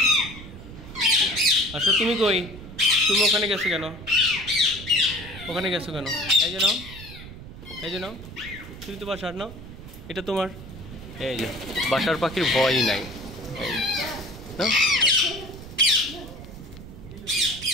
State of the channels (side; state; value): right; noise; rumble, 14 dB below the sound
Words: আসো। তুমি কই? তুমি ওখানে গেছো কেন? এই যে নাও, তুমি তো বাসার নাও, এটা তোমার। এই যে বাসার পাখির ভয়ই নাই।